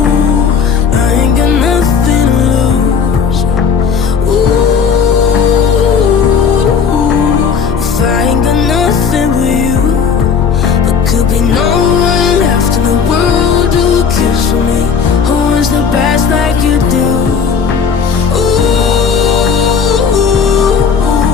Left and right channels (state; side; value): quieter; right; 6.3 dB